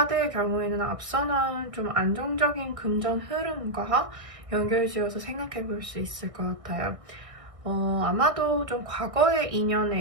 경우에는 앞서 나온 좀 안정적인 금전 흐름과 연결지어서 생각해 볼 수 있을 것 같아요. 아마도 좀 과거의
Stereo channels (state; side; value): late; left; 1.6 ms